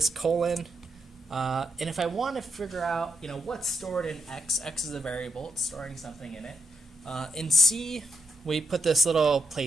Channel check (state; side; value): normal; both; correlation 0.82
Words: colon. And if I want to figure out, you know, what's stored in x is a variable. It's storing something in it. In C, we put this little